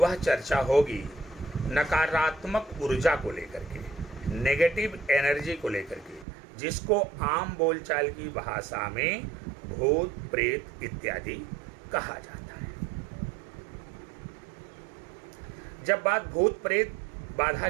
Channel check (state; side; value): drops out; left; at 6.2 s